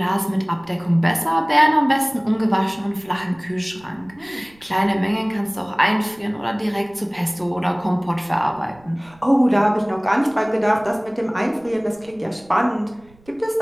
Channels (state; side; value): noise; right; rumble, 28 dB below the sound